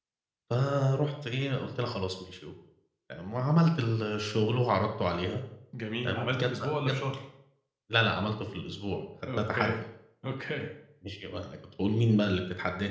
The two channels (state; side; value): identical; both; correlation 1.00